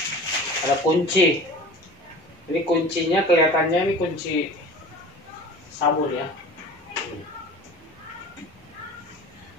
kunci. Ini kuncinya kelihatannya ini kunci sabun ya.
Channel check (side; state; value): both; normal; correlation 0.40